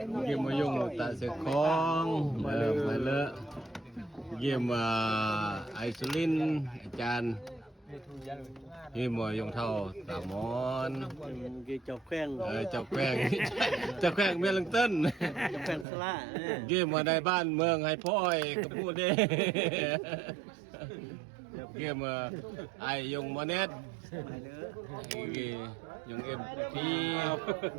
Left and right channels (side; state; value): left; drops out; at 15.9 s